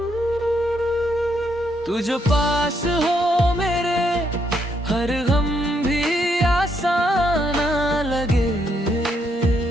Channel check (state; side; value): normal; both; correlation 0.75